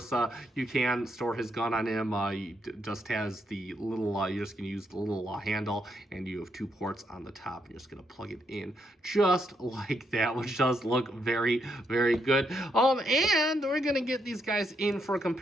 you can store his gun on him. He just has the little, you're just gonna use the little handle, and you have 2 ports on the top. You're just gonna plug it in just like that, which does look very, very good. And we're gonna get these guys in for a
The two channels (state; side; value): normal; both; correlation 0.78